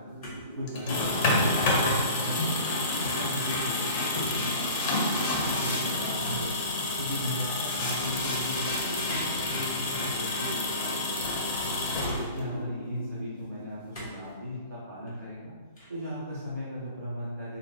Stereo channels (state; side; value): inverted; both; correlation -0.39